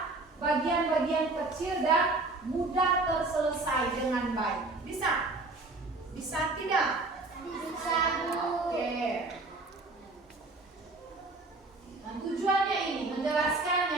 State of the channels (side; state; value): left; quieter; 3.2 dB